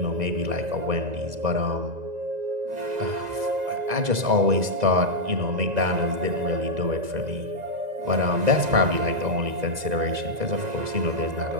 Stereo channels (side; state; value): left; late; 1.9 ms